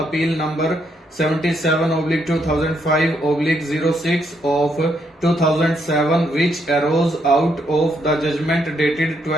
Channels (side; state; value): both; normal; correlation 0.75